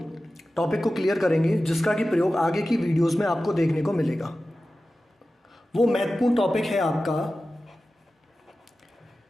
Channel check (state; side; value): normal; both; correlation 0.94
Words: टॉपिक को क्लियर करेंगे, जिसका कि प्रयोग आगे की वीडियोज़ में आपको देखने को मिलेगा। वो महत्वपूर्ण टॉपिक है आपका